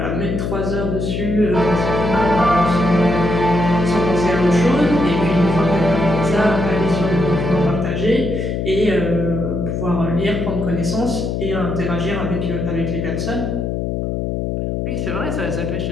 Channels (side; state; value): left; noise; hum, 2 dB below the sound